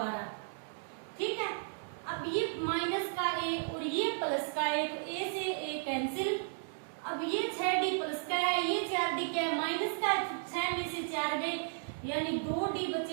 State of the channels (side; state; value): left; silent; digital silence